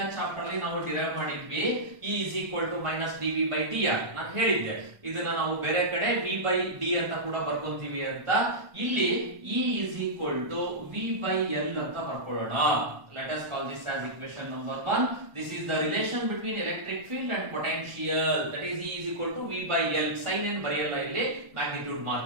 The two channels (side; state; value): left; late; 1.2 ms